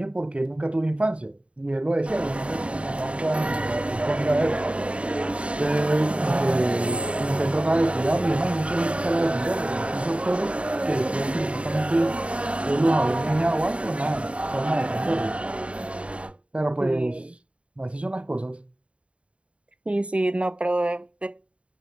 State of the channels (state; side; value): late; left; 0.061 ms